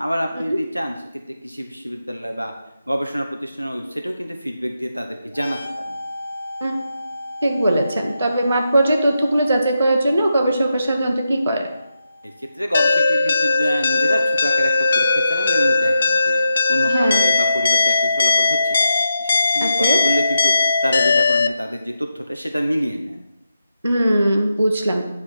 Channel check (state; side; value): inverted; both; correlation -0.86